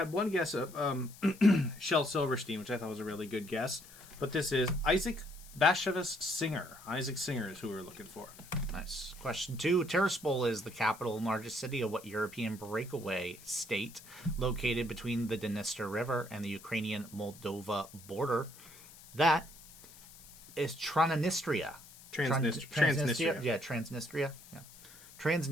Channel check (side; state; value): left; noise; hiss, 20 dB below the sound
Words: one guess of Shel Silverstein, which I thought was a really good guess. But this is Isaac Bashevis Singer. Isaac Singer is who we're looking for. Nice. Question 2. Tiraspol is the capital and largest city of what European breakaway state located between the Dniester River and the Ukrainian-Moldova border? That is Transnistria. Transnistria. Yeah, Transnistria. Yeah.